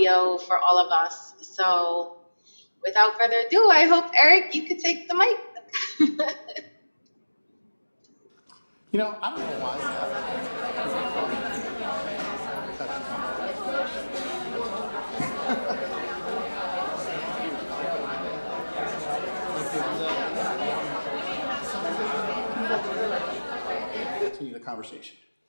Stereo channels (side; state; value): both; inverted; correlation -1.00